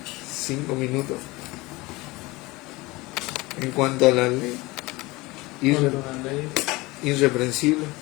5 minutos. En cuanto a la ley, irreprensible.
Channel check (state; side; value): quieter; right; 22.1 dB